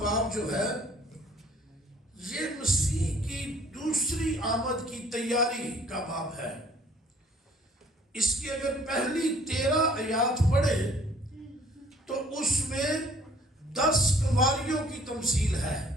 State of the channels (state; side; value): normal; both; correlation 0.56